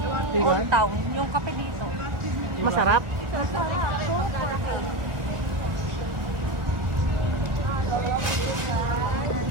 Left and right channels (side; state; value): left; late; 1.4 ms